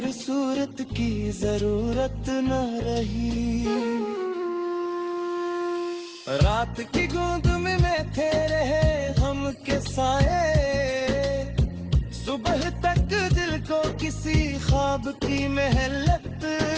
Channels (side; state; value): both; identical; correlation 1.00